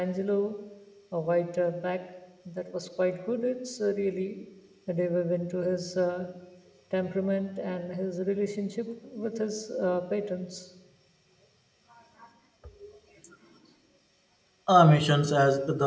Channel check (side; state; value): both; identical; correlation 1.00